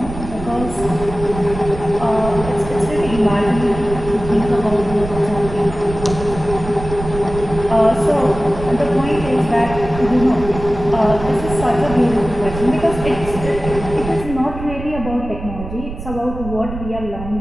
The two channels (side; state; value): right; noise; rumble, 10 dB below the sound